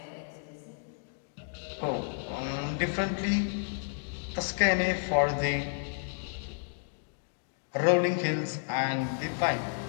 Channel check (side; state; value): right; silent; 56 dB below the other